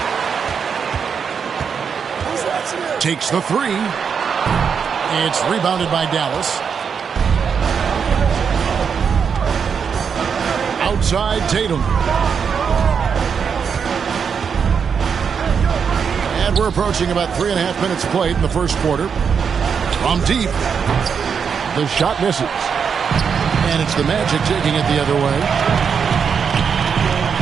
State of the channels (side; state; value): left; quieter; 6.6 dB